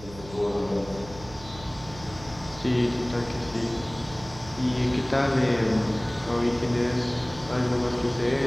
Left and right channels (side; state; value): right; noise; hum, 17 dB below the sound